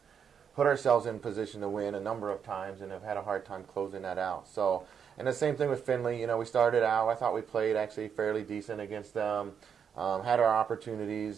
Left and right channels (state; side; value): quieter; left; 7.3 dB